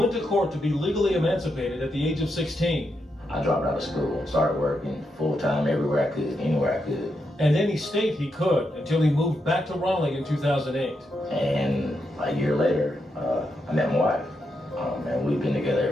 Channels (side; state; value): both; normal; correlation 0.83